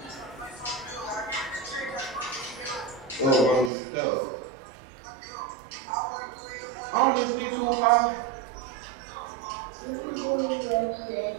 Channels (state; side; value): drops out; left; at 3.7 s